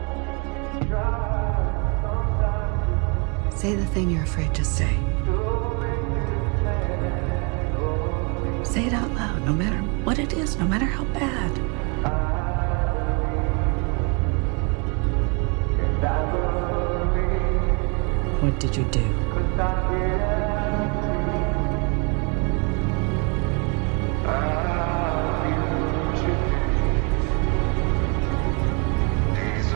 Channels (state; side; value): quieter; left; 33.5 dB